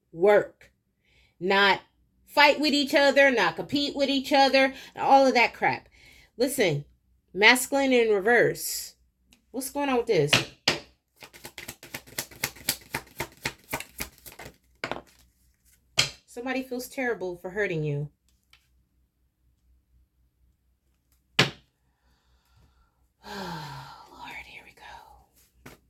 Work. Not fight with each other, not compete with each other, all of that crap. Listen, masculine in reverse. What's going on with this? Somebody feels terrible for hurting you. Lord, here we go.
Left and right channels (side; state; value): both; identical; correlation 1.00